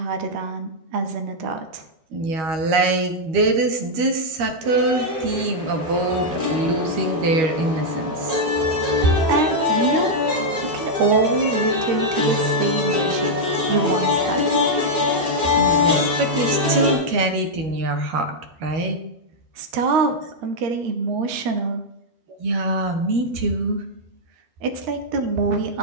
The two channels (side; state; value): left; late; 13 ms